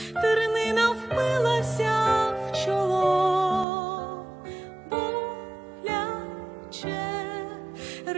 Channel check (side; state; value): left; drops out; at 3.7 s